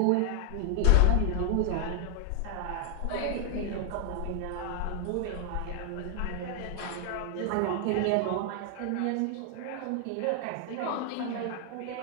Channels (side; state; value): both; different; correlation 0.00